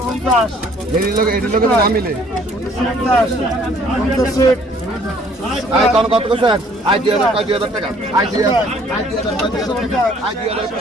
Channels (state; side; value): normal; both; correlation 0.59